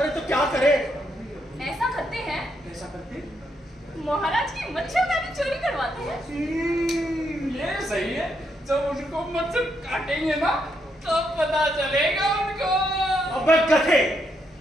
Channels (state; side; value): normal; both; correlation 0.78